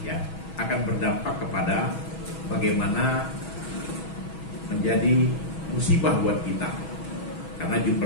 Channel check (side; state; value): right; late; 6.2 ms